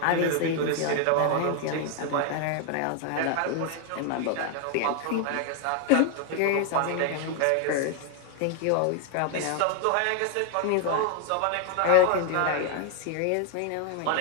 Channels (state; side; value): different; both; correlation 0.01